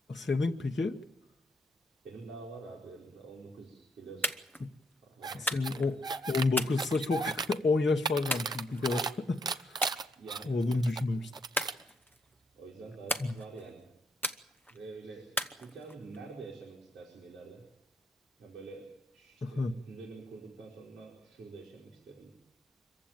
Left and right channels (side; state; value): both; normal; correlation 0.74